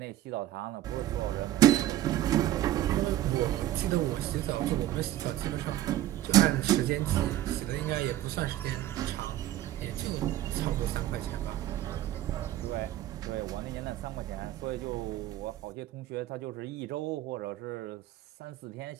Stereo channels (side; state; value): left; quieter; 13.8 dB